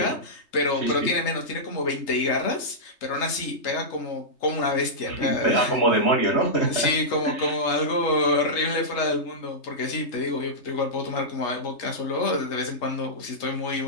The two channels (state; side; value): late; right; 3.3 ms